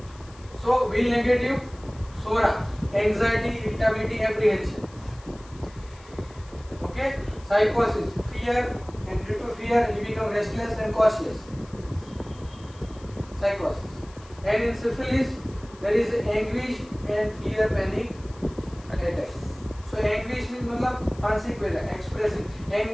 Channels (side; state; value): left; noise; hiss, 24 dB below the sound